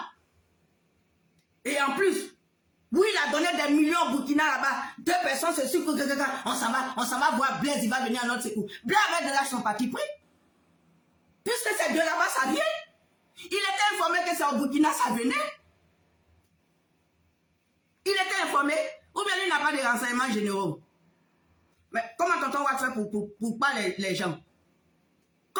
Et en plus, oui, il a donné des millions au Burkina là-bas. 2 personnes se suivent. On s'en va voir Blaise, il va venir à notre secours. Blaise avec de l'argent parti pris. Puisque ces deux là-bas, ça vient. Il était informé que c'est au Burkina, ça venait. Il était informé, ou bien il n'a pas de renseignements généraux. Mais comment tonton va faire pour pas les gens?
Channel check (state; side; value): identical; both; correlation 1.00